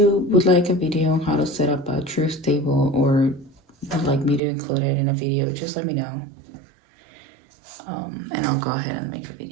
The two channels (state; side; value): drops out; left; at 4.4 s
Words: would like a video on how to set up a truth table, or would like me to include it in a video, just let me know. And I'll go ahead and make a